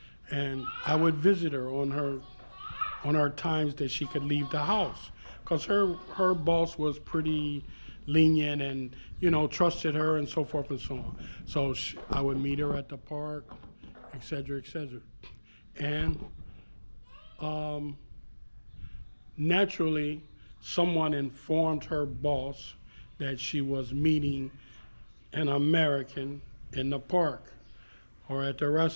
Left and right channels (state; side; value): inverted; both; correlation -1.00